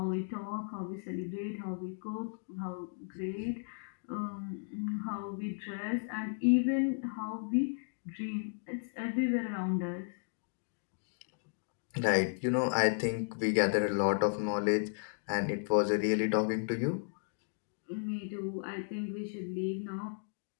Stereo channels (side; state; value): right; silent; digital silence